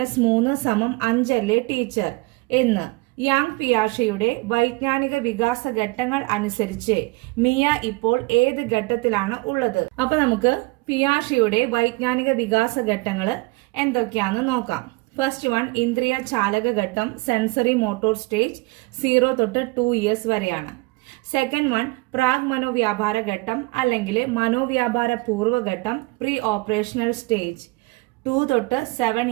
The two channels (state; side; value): quieter; left; 24.5 dB